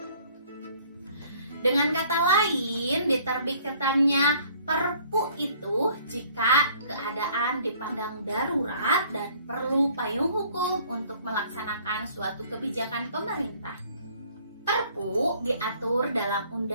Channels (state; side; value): inverted; both; correlation -0.56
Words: Dengan kata lain, diterbitkannya Perpu itu jika keadaan dipandang darurat dan perlu payung hukum untuk melaksanakan suatu kebijakan pemerintah. Perpu diatur dalam